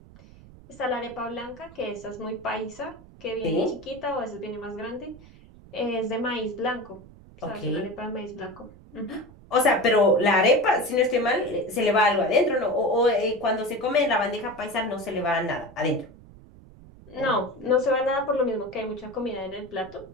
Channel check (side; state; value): right; noise; rumble, 21 dB below the sound